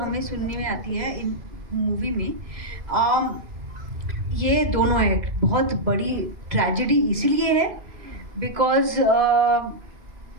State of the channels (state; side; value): late; left; 2.1 ms